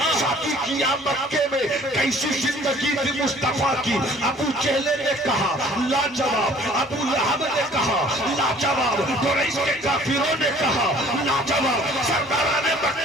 शादी किया मक्के में। कैसी जिंदगी थी मुस्तफा की। अबू जहल ने कहा लाजवाब, अबू लहब ने कहा लाजवाब, कुरैश के काफिरों ने कहा लाजवाब, सरदाराने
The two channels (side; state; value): both; normal; correlation 0.53